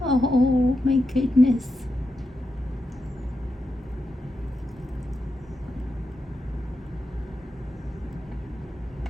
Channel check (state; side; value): normal; both; correlation 0.88